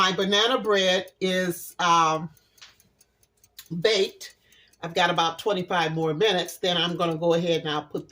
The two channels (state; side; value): identical; both; correlation 1.00